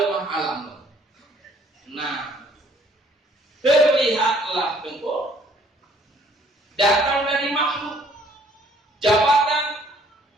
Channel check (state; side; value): normal; both; correlation 0.61